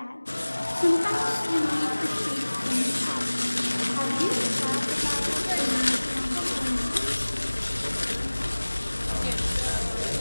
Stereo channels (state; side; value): inverted; both; correlation -1.00